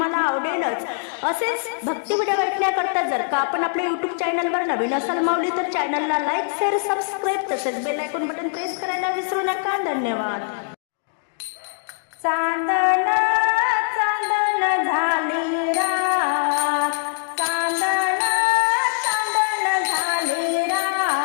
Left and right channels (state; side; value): silent; right; digital silence